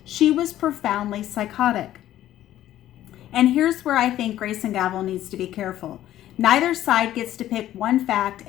She was profoundly psychotic. And here's where I think Grace and Gavel needs to be careful. Neither side gets to pick one fact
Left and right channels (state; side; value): quieter; right; 13.0 dB